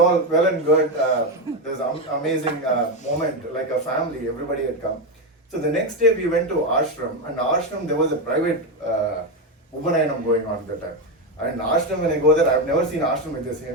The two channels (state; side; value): normal; both; correlation 0.10